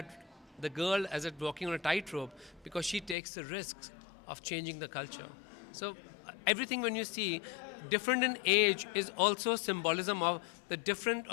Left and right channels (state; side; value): drops out; right; at 3.2 s